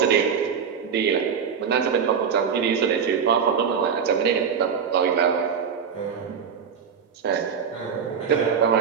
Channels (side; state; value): left; quieter; 6.9 dB